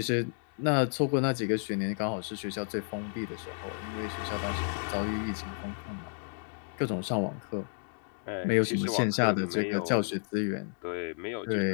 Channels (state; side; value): silent; right; digital silence